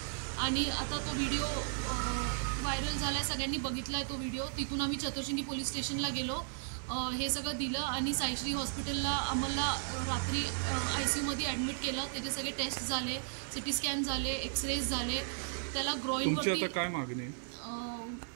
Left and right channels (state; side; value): silent; left; digital silence